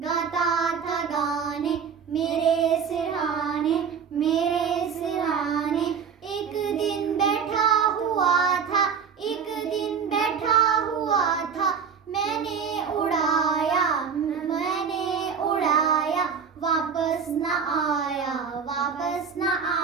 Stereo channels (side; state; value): left; quieter; 6.7 dB